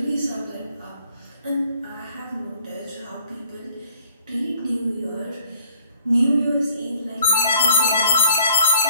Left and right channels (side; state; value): both; inverted; correlation -0.60